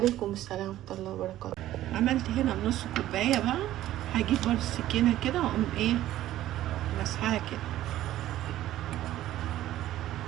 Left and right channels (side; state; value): left; quieter; 13.9 dB